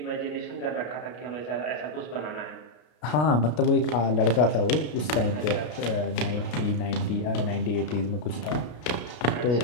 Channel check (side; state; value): right; late; 33 ms